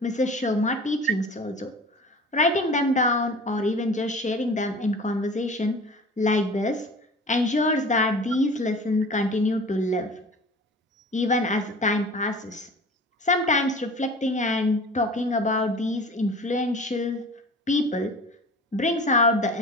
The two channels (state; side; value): normal; both; correlation 0.41